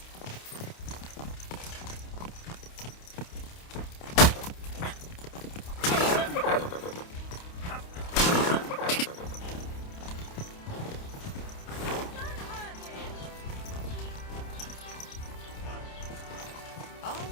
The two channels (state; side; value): late; right; 28 ms